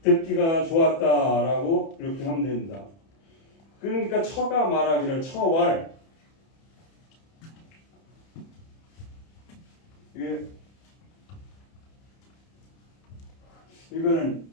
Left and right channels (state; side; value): late; right; 30 ms